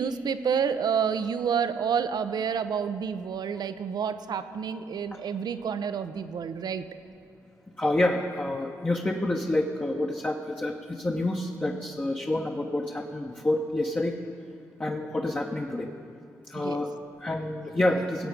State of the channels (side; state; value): both; normal; correlation 0.76